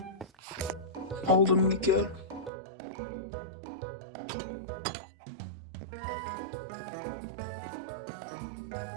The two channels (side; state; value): left; drops out; at 2.5 s